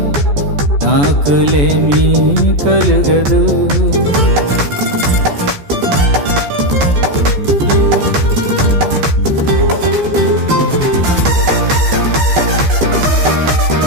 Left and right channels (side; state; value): left; late; 14 ms